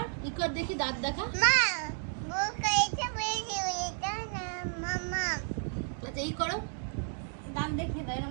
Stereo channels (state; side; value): silent; left; 56 dB below the other